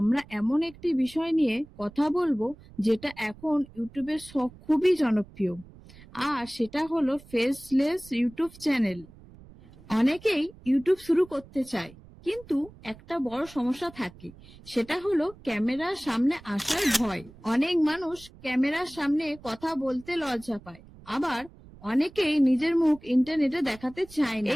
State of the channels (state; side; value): noise; right; rumble, 21 dB below the sound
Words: এমন একটি বিষয় নিয়ে কথা বলবো যেটা এখন ইউটিউবের খুবই জনপ্রিয়, আর সেটা হলো ফেসলেস ইউটিউব চ্যানেল। অনেকেই ইউটিউব শুরু করতে চায়, কিন্তু একটা বড় সমস্যা থাকে, সেটা হলো ক্যামেরার সামনে আসার ভয়। অনেক মানুষ ক্যামেরার সামনে কথা বলতে লজ্জা পায়, আবার অনেকেই নিজের মুখ ইন্টারনেটে দেখাতে চায় না।